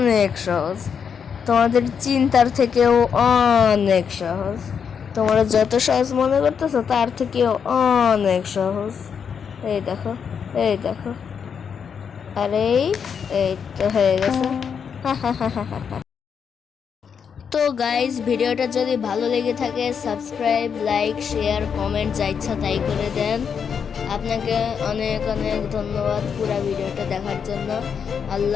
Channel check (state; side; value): quieter; right; 6.9 dB